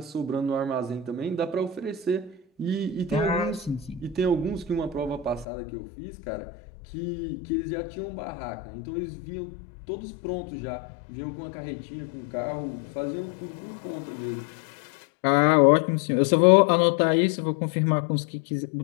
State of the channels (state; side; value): drops out; right; at 5.5 s